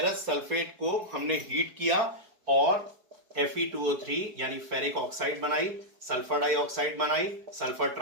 सल्फेट को हमने हीट किया और Fe2O3 यानी फेरिक ऑक्साइड बनाई, सल्फर डाइऑक्साइड बनाई, सल्फर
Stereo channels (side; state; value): left; late; 4.7 ms